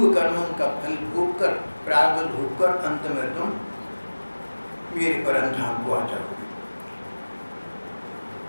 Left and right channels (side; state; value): both; inverted; correlation -1.00